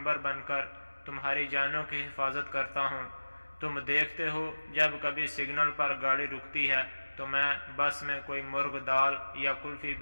بن کر تمہاری جانوں کی حفاظت کرتا ہوں۔ تم دیکھتے ہو جب کبھی سگنل پر گاڑی رکتی ہے تو میں بس میں کوئی مرغ دال یا کلفی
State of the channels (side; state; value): both; inverted; correlation -1.00